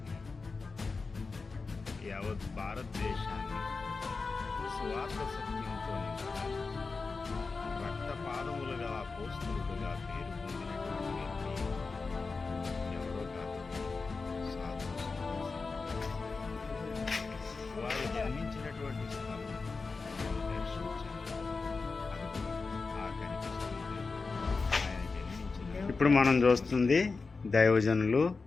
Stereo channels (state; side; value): quieter; right; 4.3 dB